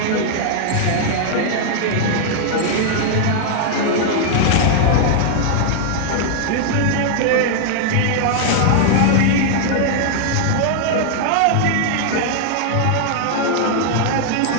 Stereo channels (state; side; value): different; both; correlation -0.01